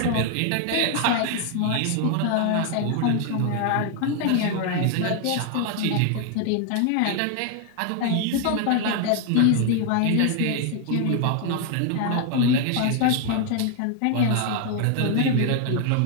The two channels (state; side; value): different; both; correlation 0.00